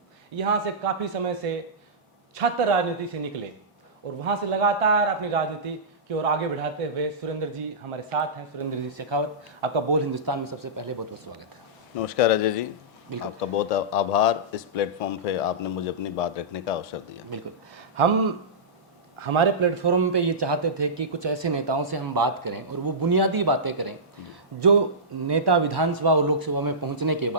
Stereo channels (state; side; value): normal; both; correlation -0.17